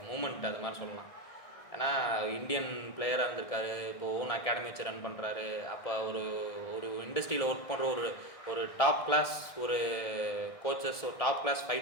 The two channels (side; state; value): right; late; 1.6 ms